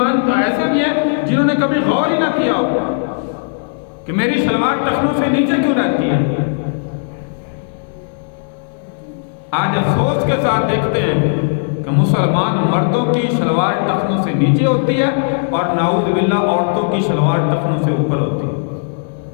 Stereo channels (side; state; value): right; silent; 65 dB below the other